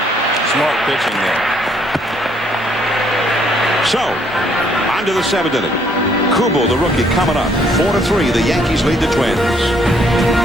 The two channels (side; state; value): both; normal; correlation 0.67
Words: Smart pitching there. So, on to the 7th inning. Kubel, the rookie, coming up. 4-3. The Yankees lead the Twins.